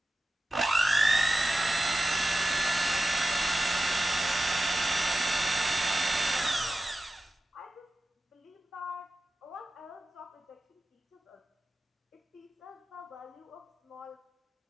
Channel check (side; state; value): both; normal; correlation 0.93